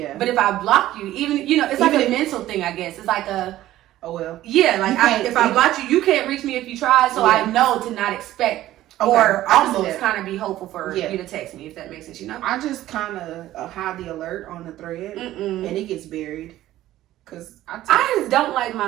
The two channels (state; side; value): quieter; left; 14.4 dB